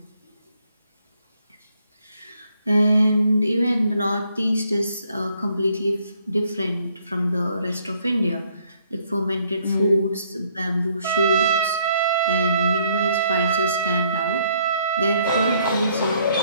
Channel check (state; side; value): inverted; both; correlation -0.68